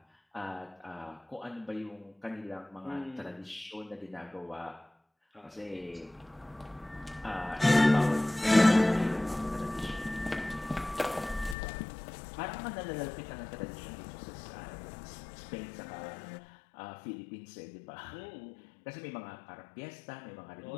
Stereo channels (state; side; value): drops out; right; at 11.6 s